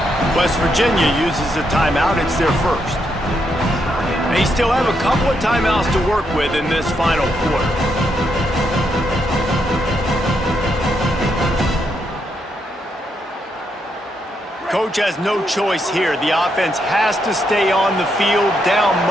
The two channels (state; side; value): normal; both; correlation 0.79